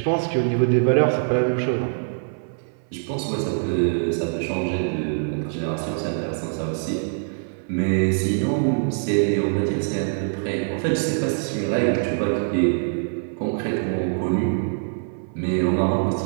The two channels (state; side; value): silent; left; 58 dB below the other